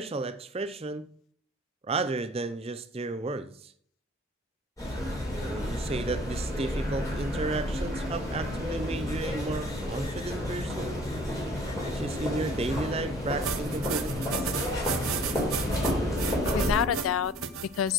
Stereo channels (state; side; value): normal; both; correlation 0.52